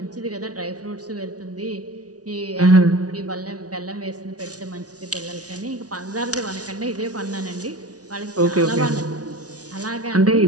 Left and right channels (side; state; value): left; late; 0.68 ms